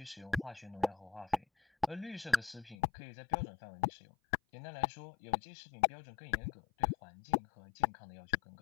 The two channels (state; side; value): drops out; right; at 2.8 s